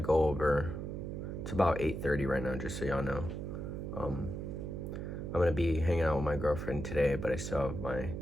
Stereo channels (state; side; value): noise; right; hum, 5 dB below the sound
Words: over, it's about 8:30 right now, just so y'all know. I'm going to be hanging out with my girlfriend today, but I still have my